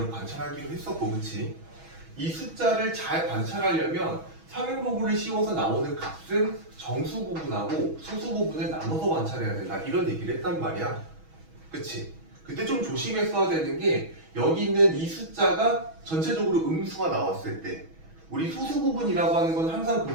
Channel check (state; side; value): late; left; 6.2 ms